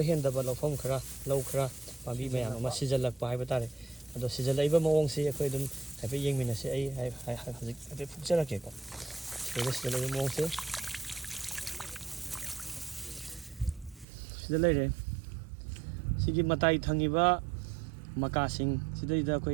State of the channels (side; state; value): left; drops out; at 14.1 s